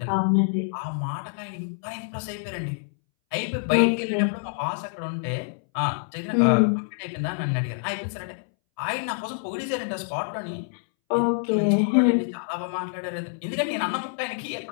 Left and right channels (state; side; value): silent; right; 61 dB below the other